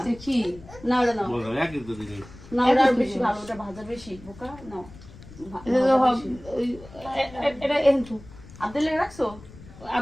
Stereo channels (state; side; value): noise; left; rumble, 19 dB below the sound